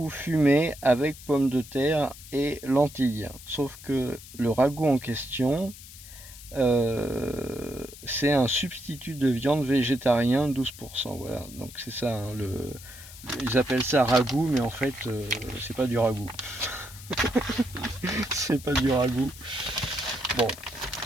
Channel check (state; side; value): noise; left; hiss, 17 dB below the sound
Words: fumé avec pommes de terre et lentilles. Sauf que le ragoût en question, c'est un substitut de viande végétarien 12%. Voilà, donc c'est ça. Hein, ils appellent ça ragoût, mais en fait, c'est pas du ragoût. C'est pas du ragoût. Bon,